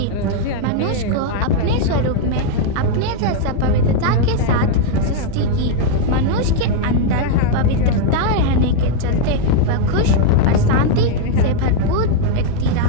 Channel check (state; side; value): different; both; correlation 0.00